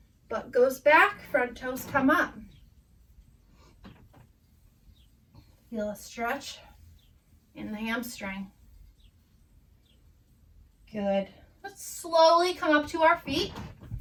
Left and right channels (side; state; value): both; identical; correlation 1.00